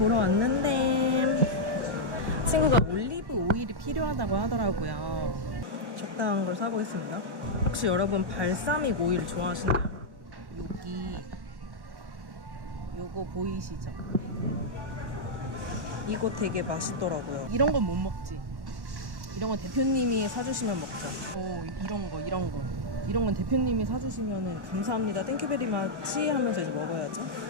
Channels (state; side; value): late; left; 1.1 ms